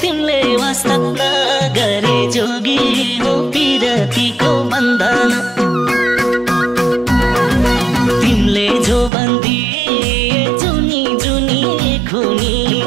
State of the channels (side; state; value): left; drops out; at 9.1 s